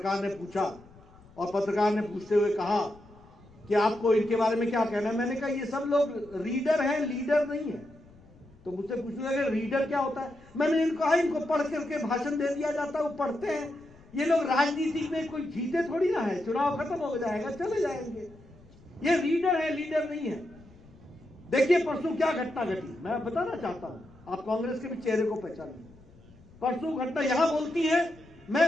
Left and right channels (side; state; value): left; noise; rumble, 25 dB below the sound